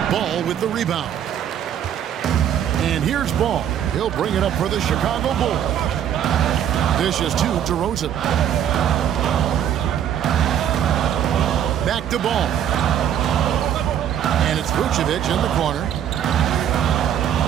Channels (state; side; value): quieter; left; 9.7 dB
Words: Ball with the rebound. And here's Ball. He'll bring it up for the Chicago Bulls. Dishes to DeRozan. Back to Ball. And it's Vucevic in the corner.